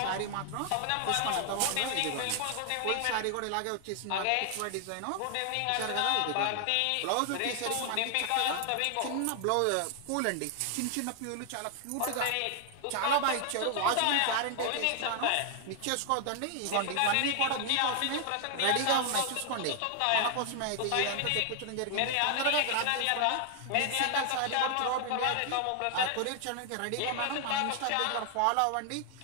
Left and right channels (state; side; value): different; both; correlation 0.00